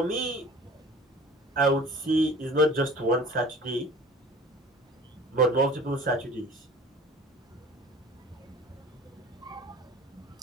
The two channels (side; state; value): both; normal; correlation 0.45